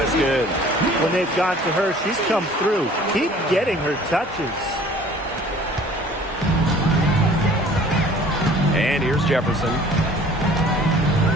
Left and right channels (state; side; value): normal; both; correlation 0.51